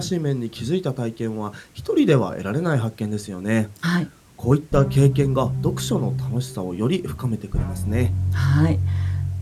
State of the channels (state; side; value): identical; both; correlation 1.00